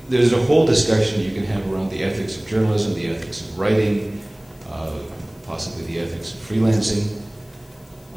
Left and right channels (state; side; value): noise; left; hiss, 30 dB below the sound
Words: there's a whole discussion you can have around the ethics of journalism, the ethics of writing, possibly the ethics of freelancing.